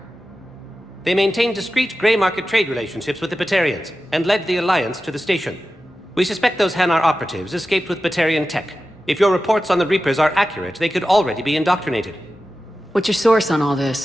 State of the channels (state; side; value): normal; both; correlation 0.93